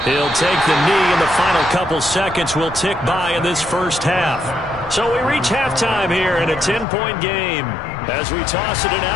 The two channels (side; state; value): right; drops out; at 6.9 s